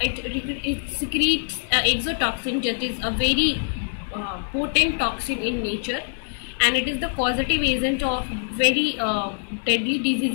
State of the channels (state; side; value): silent; right; digital silence